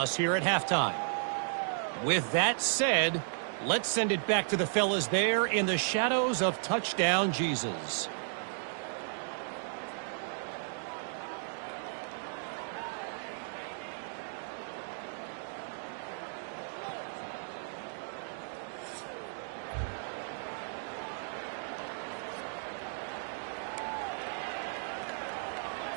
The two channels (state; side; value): silent; left; digital silence